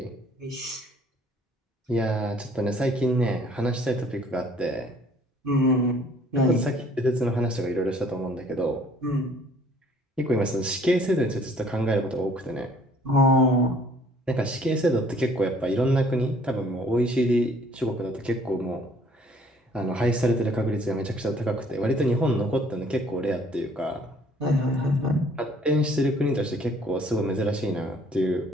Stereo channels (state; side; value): normal; both; correlation 0.59